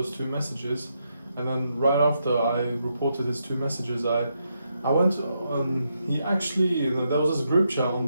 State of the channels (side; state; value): both; inverted; correlation -0.81